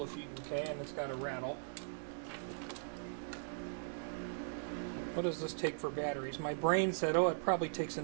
if you, okay, and it's got a rattle. What does this take for batteries? My brain said, oh, it probably takes a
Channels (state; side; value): silent; left; digital silence